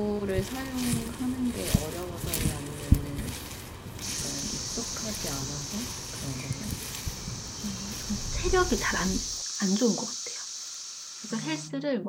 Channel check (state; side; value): identical; both; correlation 1.00